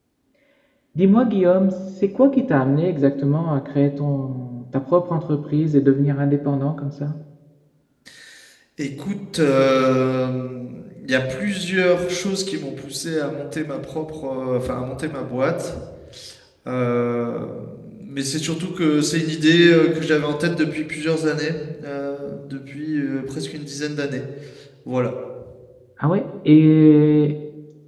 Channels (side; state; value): both; identical; correlation 1.00